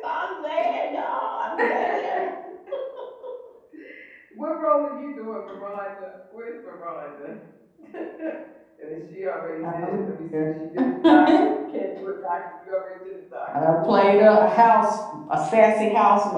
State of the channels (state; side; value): identical; both; correlation 1.00